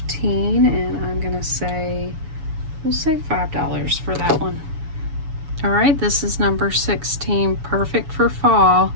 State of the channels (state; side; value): late; left; 7.0 ms